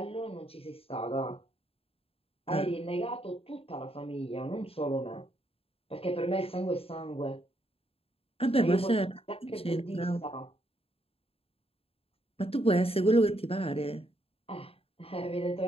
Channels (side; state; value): right; late; 0.28 ms